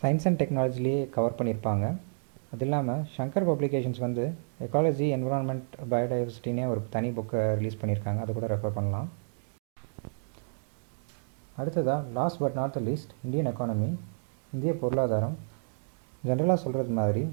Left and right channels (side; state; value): left; silent; digital silence